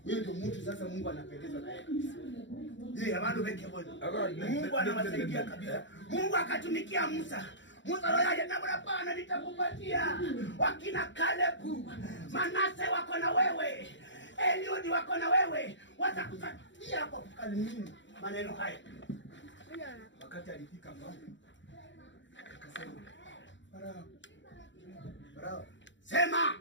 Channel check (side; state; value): right; late; 0.54 ms